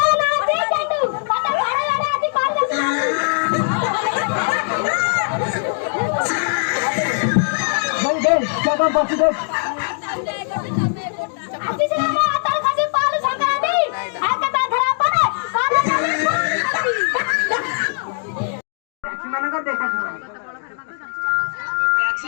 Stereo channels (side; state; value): right; silent; digital silence